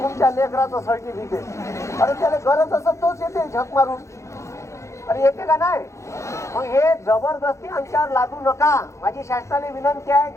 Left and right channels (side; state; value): right; late; 0.14 ms